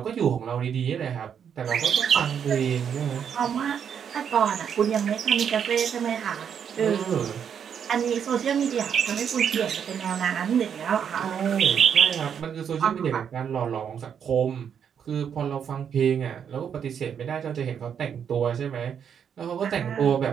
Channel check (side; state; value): left; quieter; 7.9 dB